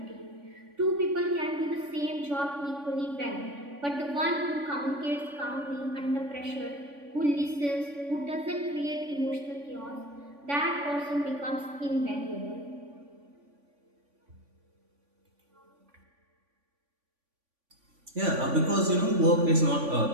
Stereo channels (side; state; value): left; late; 3.5 ms